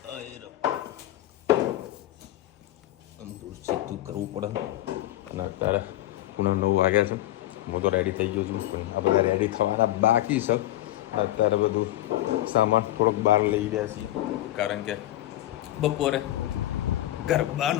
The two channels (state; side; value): quieter; right; 14.8 dB